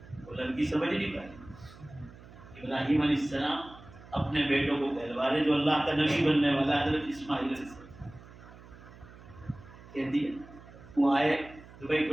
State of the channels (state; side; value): noise; right; hum, 19 dB below the sound